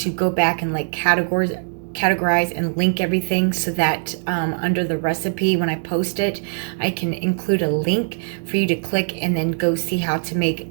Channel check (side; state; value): left; silent; digital silence